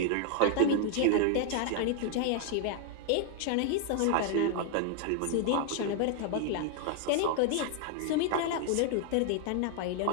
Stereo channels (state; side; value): different; both; correlation 0.00